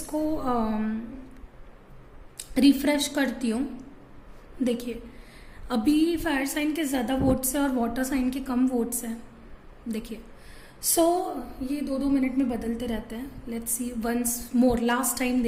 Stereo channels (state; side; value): identical; both; correlation 1.00